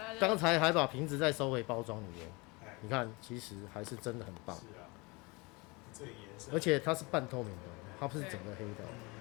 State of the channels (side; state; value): right; quieter; 26.4 dB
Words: 刚才还把瓶子再收回包装里面，你看，其实还是真的很棒。是啊，这颜色，而且它是半透明的，它不是整个黑的，